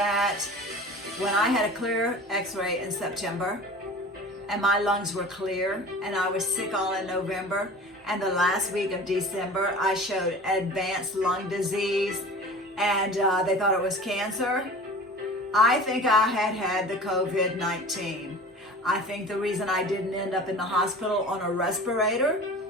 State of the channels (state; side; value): normal; both; correlation 0.40